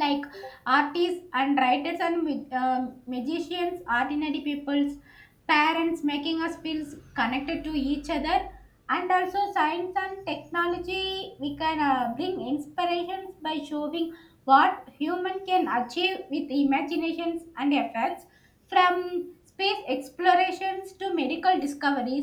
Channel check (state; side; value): identical; both; correlation 1.00